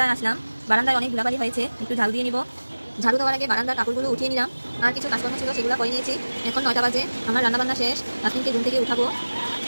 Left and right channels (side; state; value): both; inverted; correlation -1.00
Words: আসলাম। বারান্দায় অনেক ধুলাবালি হয়েছে, একটু ঝাড়ু দিয়ে নিব। ঝাড়ু দেওয়ার আগে বারান্দার কাপড়গুলো উঠিয়ে নিলাম। আর কিছু কাজকর্ম ছিল, সেগুলো করে নিয়েছি। এখন 9টা বাজে, আমার রান্না বান্না শেষ। তাসমিনকে ঘুম থেকে উঠাবো।